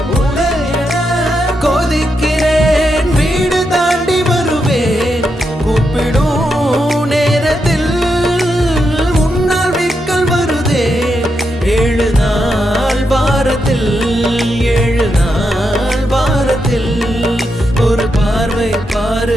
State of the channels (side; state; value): both; normal; correlation 0.84